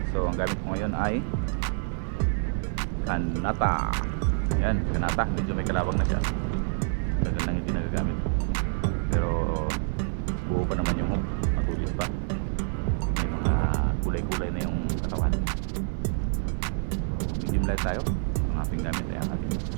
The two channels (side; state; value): left; silent; 60 dB below the other